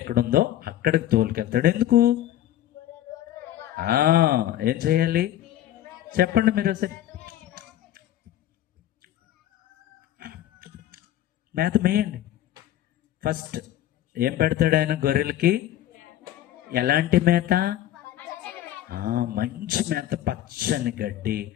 అక్కడికి తోలుకెళ్తాడు. ఎందుకు? ఏం చేయాలి చెప్పండి మీరు ఒకసారి. మేత మేయండి. ఫస్ట్ ఏం పెడతాడు ఆయన గొర్రెలకి? ఎలాంటి మేత? మంచి మేత, పచ్చని గడ్డి,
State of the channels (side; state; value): right; quieter; 12.7 dB